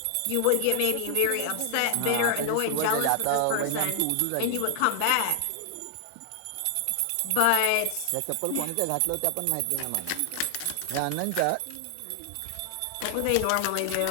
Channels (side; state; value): both; different; correlation 0.00